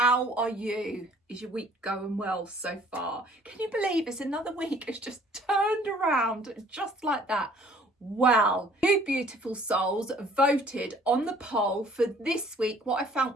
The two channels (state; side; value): normal; both; correlation 0.56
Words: are you? Is your week going well so far? Can you believe it's another week? It's just turned around just like that. Well, you beautiful souls voted on the poll for this week, What I Found